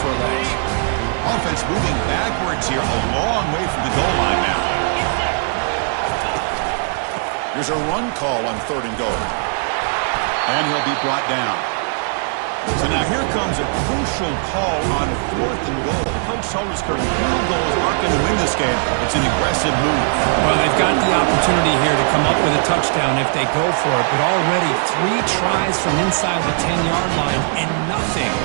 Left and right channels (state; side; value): silent; left; 63 dB below the other